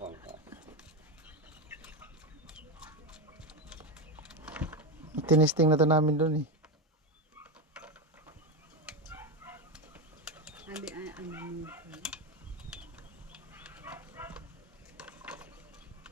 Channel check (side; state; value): both; normal; correlation 0.14